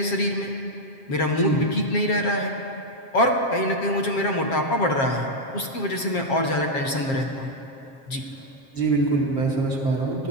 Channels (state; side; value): late; right; 7.5 ms